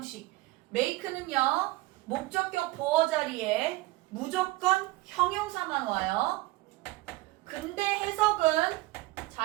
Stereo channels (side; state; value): left; quieter; 19.7 dB